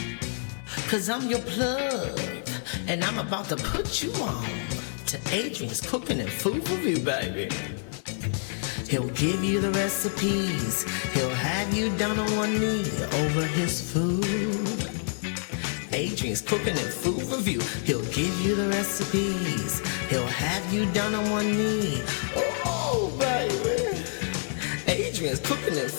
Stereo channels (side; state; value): right; silent; digital silence